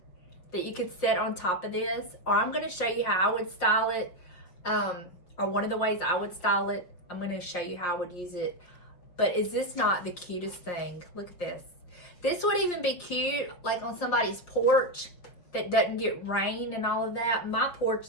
that you could set on top of this, or I'm going to show you how I would style it, or one of the ways I would style it. I'm going to show you how I would use it. But is this not the cutest thing? Look at this. This would even be cute like on somebody's porch that doesn't get rain and all of that. My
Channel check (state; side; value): late; right; 5.7 ms